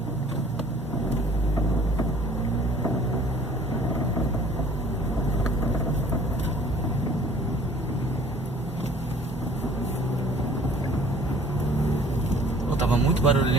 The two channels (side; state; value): both; normal; correlation 0.52